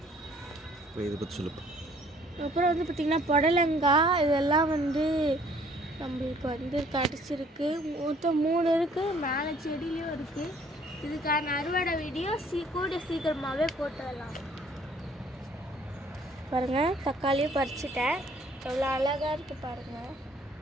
அப்புறம் வந்து பார்த்திங்கன்னா புடலங்காய், இதெல்லாம் வந்து நம்மளுக்கு வந்து கிடச்சிருக்கு. மொத்தம் 3 இருக்குது. மேலே செடியிலையும் இருக்குது. இதுக்கான அறுவடை வீடியோ கூட சீக்கிரமாகவே போட்டுடலாம். பாருங்கள், தக்காளியும் பறிச்சிட்டேன். எவ்வளோ அழகாக இருக்குது பாருங்கள்.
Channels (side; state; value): both; normal; correlation 0.59